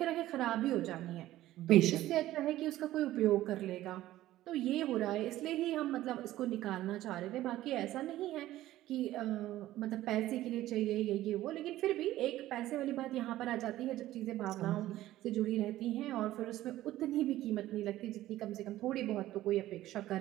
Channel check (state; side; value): quieter; left; 14.8 dB